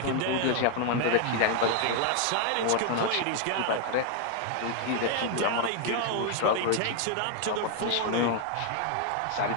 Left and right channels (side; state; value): both; different; correlation 0.00